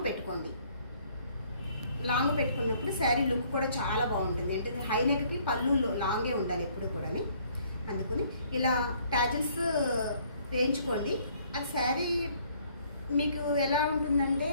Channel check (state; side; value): inverted; both; correlation -0.62